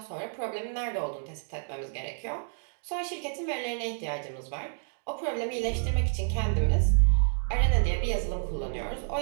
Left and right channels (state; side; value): quieter; left; 38.1 dB